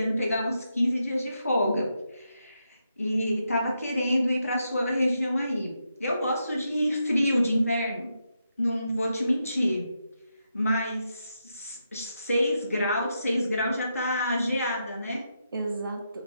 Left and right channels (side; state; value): both; inverted; correlation -0.83